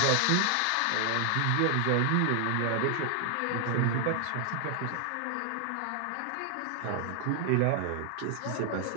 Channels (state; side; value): different; both; correlation 0.00